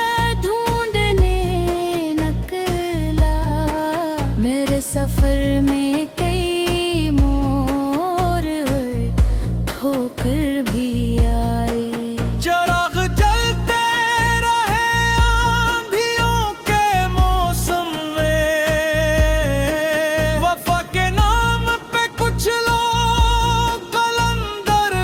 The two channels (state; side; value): identical; both; correlation 1.00